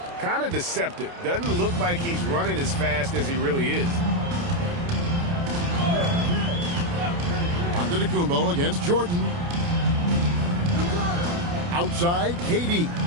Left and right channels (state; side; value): late; left; 29 ms